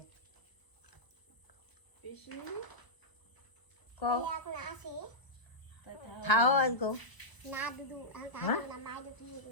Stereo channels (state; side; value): late; right; 1.0 ms